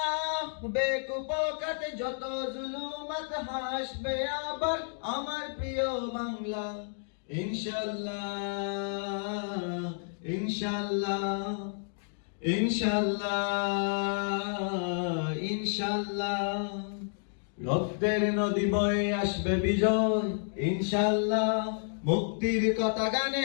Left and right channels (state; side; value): silent; right; digital silence